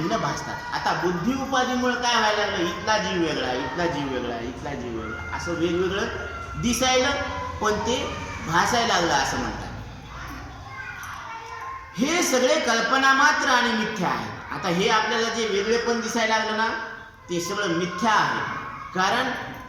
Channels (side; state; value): both; identical; correlation 1.00